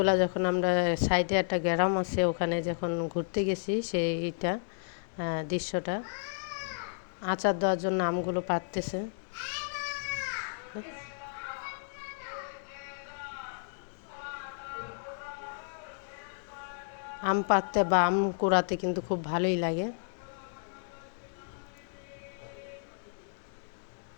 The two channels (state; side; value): silent; right; digital silence